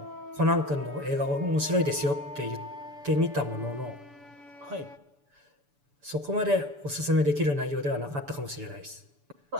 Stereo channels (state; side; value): late; left; 6.9 ms